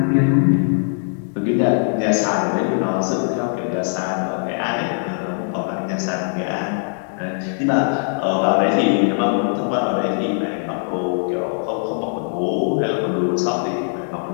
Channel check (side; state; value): right; silent; digital silence